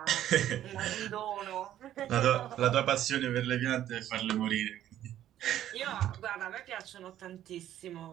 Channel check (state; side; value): quieter; left; 12.0 dB